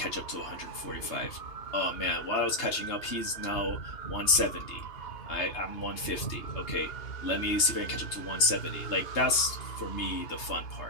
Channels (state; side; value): late; right; 2.8 ms